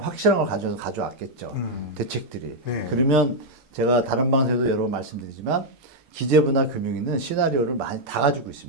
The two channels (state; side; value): normal; both; correlation -0.02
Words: 확실한 걸 가져왔겠죠. 대책들이. 그러면 제가 다른 방송에도 여러 번 말씀드리지만 기재부나 금융위는 시나리오를 많이 다 가지고